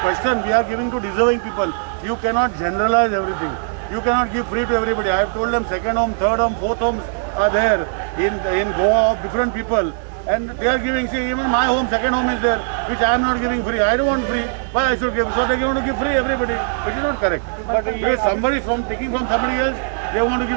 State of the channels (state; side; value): silent; left; 65 dB below the other